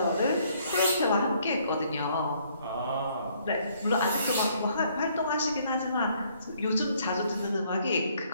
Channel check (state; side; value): inverted; both; correlation -0.65